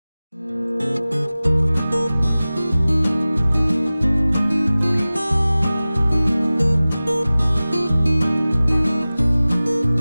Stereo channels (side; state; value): both; inverted; correlation -0.98